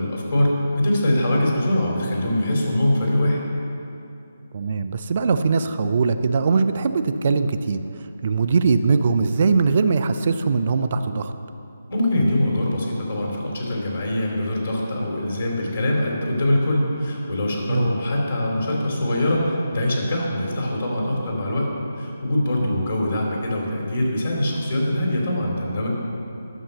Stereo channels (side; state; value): both; inverted; correlation -0.87